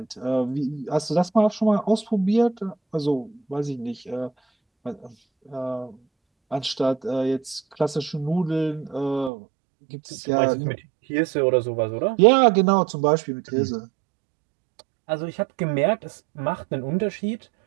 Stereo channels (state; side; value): drops out; left; at 9.3 s